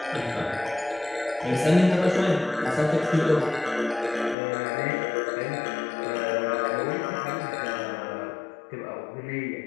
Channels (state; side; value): drops out; right; at 4.4 s